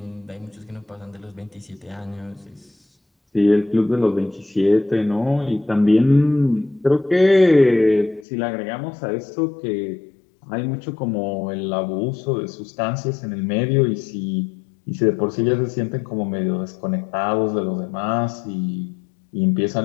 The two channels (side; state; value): right; drops out; at 8.2 s